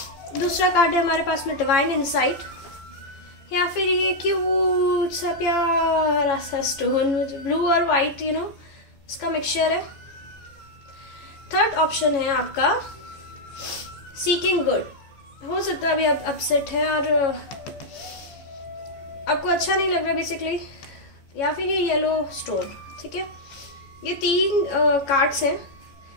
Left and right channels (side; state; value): right; late; 15 ms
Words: दूसरा कार्ड है हमारे पास में डिवाइन इंसाइट, या फिर ये क्यूट सा प्यारा सा स्टोन ब्लू और व्हाइट इसका मिक्सचर है। थर्ड ऑप्शन है आपका सीकिंग गुड। हो सकता है अभी आप अपसेट है और आपको अच्छा नहीं लग रहा बेसिकली, या फिर ये येलो स्टोन। ठीक है, ये 3 कार्ड्स हैं,